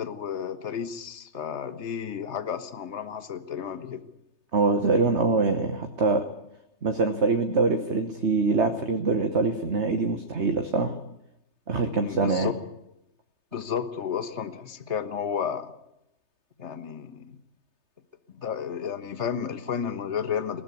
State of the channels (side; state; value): left; late; 3.3 ms